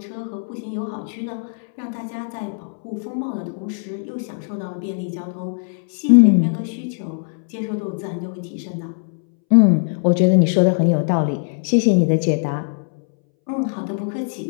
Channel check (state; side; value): silent; right; 64 dB below the other